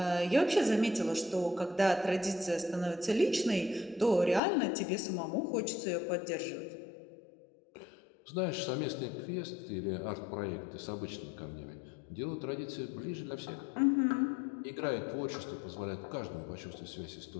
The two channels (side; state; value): right; drops out; at 4.4 s